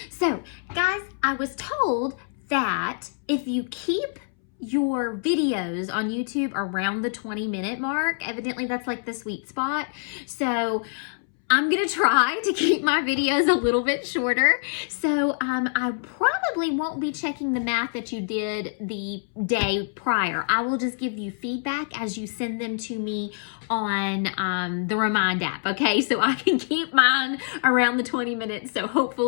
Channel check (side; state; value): right; silent; 61 dB below the other